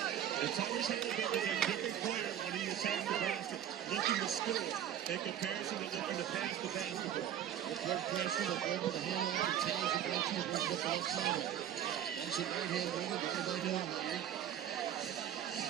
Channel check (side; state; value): left; quieter; 10.4 dB